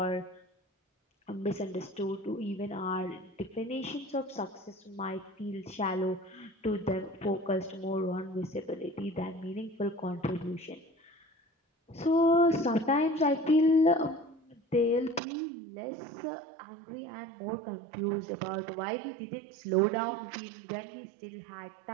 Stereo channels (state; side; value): drops out; left; at 15.2 s